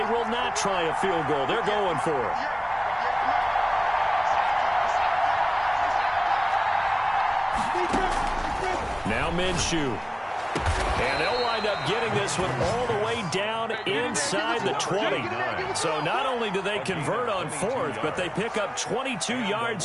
will not try a field goal. They're going for it. Now Minshew. And they'll wind up getting this one all the way down inside the 20. So not only do they convert on 4th, but they pick up 22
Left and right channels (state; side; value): identical; both; correlation 1.00